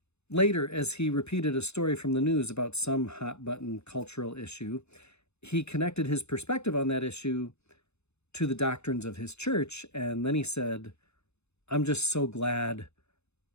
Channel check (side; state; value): right; late; 0.80 ms